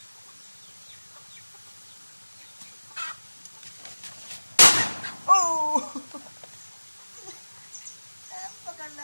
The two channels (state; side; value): inverted; both; correlation -1.00